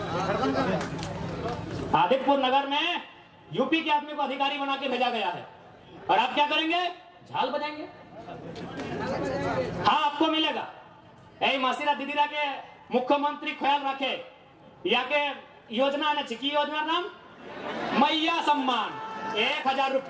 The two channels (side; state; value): both; identical; correlation 1.00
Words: आदित्यपुर नगर में यूपी के आदमी को अधिकारी बना के भेजा गया है। और आप क्या करेंगे? झाल बजाएंगे। हाँ, आपको मिलेगा। ऐ मासीरा दीदीरा के मुख्यमंत्री ख्याल रखे, या के योजना ने छिकी योजना नाम मैया सम्मान 1000